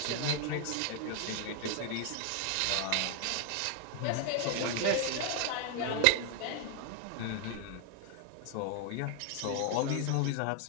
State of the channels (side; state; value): both; different; correlation 0.00